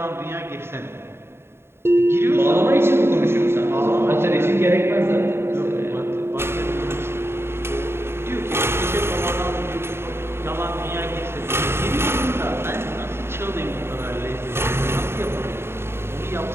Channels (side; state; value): left; late; 0.12 ms